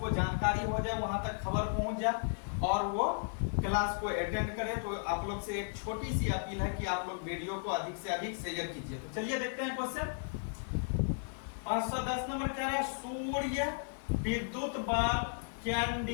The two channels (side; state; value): right; silent; digital silence